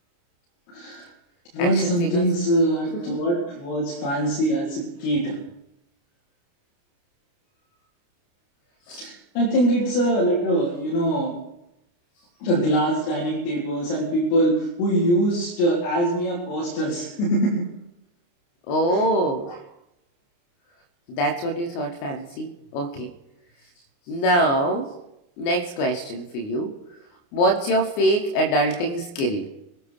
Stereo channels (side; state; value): right; late; 29 ms